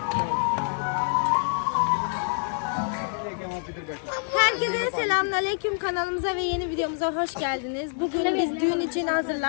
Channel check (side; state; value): right; silent; 61 dB below the other